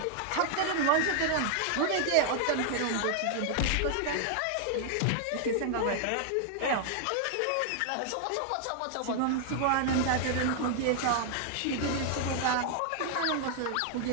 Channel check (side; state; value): both; different; correlation 0.00